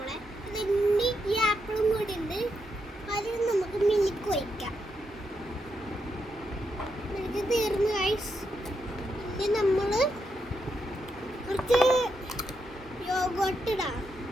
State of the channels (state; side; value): normal; both; correlation 0.82